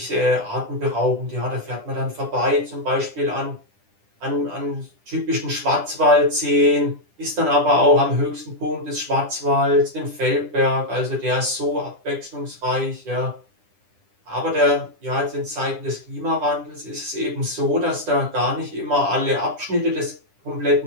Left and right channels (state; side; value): late; left; 10 ms